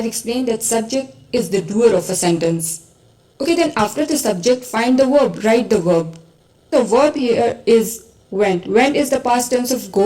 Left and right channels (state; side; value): identical; both; correlation 1.00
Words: explained that subject is the doer of a sentence. Okay, then after the subject, find the verb, write the verb. The verb here is went. Went is the past tense of